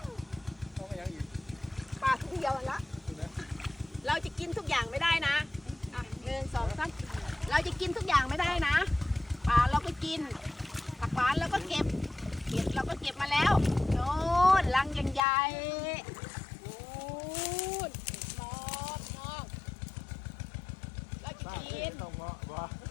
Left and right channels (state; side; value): drops out; right; at 15.2 s